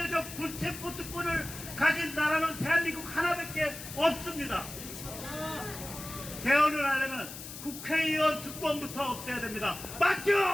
불체포 특권을 가진 나라는 대한민국 하나밖에 없습니다. 개헌을 하려면 국회의원 특권부터 없애야 됩니다.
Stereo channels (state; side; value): noise; left; hiss, 11 dB below the sound